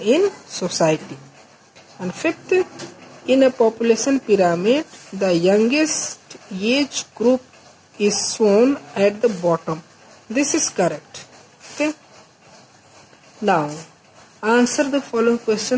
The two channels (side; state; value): both; identical; correlation 1.00